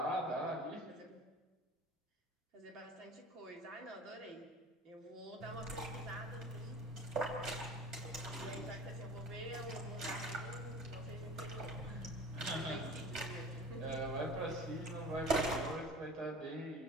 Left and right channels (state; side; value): normal; both; correlation 0.40